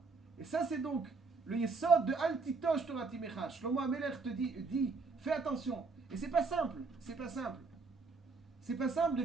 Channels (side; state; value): left; quieter; 4.3 dB